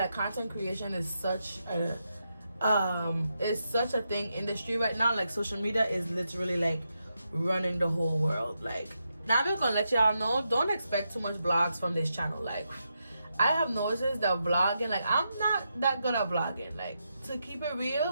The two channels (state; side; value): inverted; both; correlation -0.84